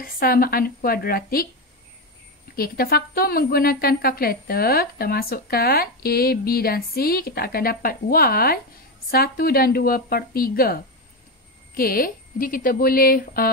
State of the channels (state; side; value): normal; both; correlation 0.13